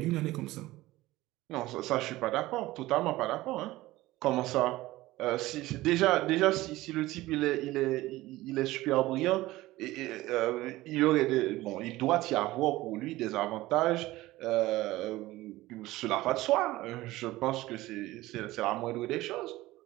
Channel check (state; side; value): quieter; left; 17.8 dB